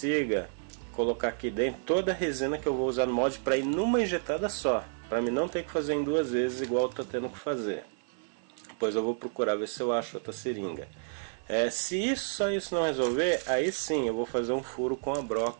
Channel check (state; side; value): silent; left; 58 dB below the other